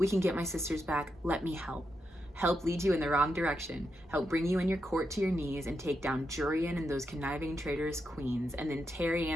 can get my sisters back. Let me help. Help lead you in the wrong direction. Help bring you and your court to your knees and take down Jurian and those conniving traitorous queens, and then tear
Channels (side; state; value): both; normal; correlation 0.84